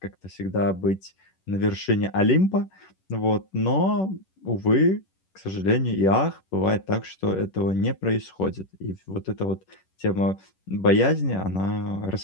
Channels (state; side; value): late; right; 11 ms